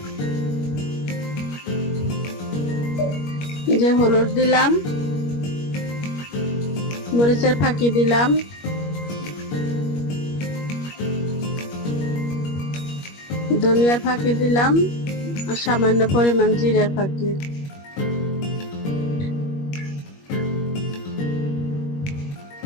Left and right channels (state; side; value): late; right; 21 ms